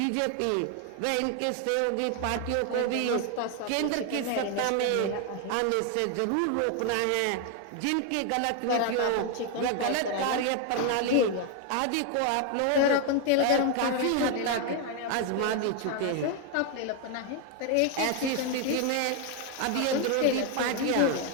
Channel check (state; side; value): different; both; correlation 0.01